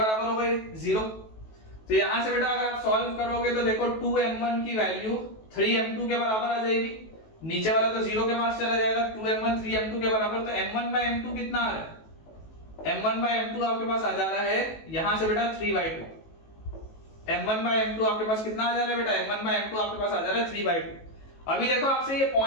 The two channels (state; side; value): late; right; 18 ms